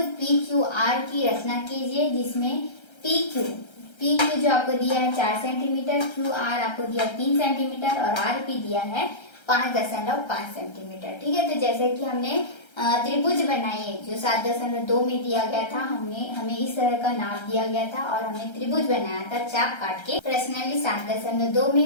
पी क्यू आर की रचना कीजिए, जिसमें पी क्यू जो आपको दिया है 4 सेंटीमीटर, क्यू आर आपको दिया 3 सेंटीमीटर और आर पी दिया है 5.5 सेंटीमीटर। ठीक है, तो जैसे कि हमने त्रिभुज बनाई है जो 7.2 में दिया गया था, हमें इस तरह का नाप दिया गया था और हमने त्रिभुज बनाया था चाप काट के। प्रश्नावली 7.2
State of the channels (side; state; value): right; late; 1.3 ms